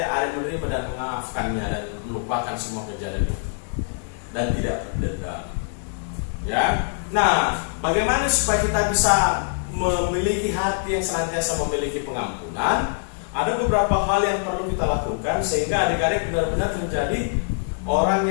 adik menerima dan memaafkannya dan melupakan semua kejadian itu dan tidak berdendam. Ya. Nah, bagaimana supaya kita bisa memiliki hati yang senantiasa memiliki pengampunan? Ada beberapa hal yang perlu kita lakukan sehingga adik-adik benar-benar menjadi orang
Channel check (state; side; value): silent; right; digital silence